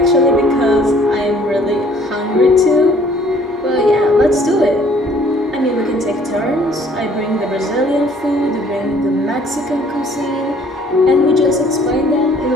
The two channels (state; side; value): normal; both; correlation 0.58